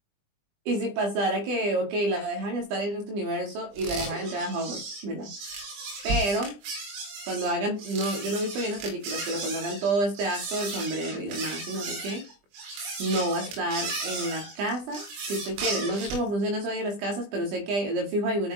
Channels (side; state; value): left; late; 21 ms